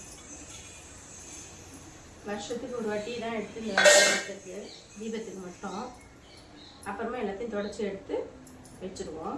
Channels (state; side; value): identical; both; correlation 1.00